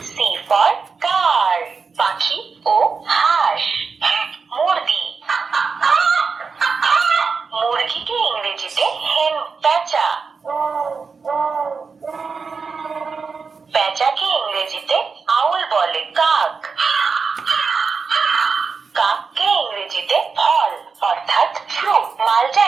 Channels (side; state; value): left; quieter; 5.1 dB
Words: C for car, পাখি ও হাঁস। মুরগি, মুরগিকে ইংরেজিতে হেন। পেঁচা, পেঁচাকে ইংরেজিতে আউল বলে। কাক, কাককে ইংরেজিতে ফল অর্থাৎ ফ্রুট। মালটা